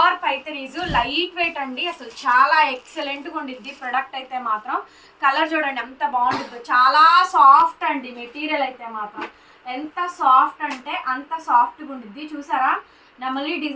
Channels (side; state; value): both; identical; correlation 1.00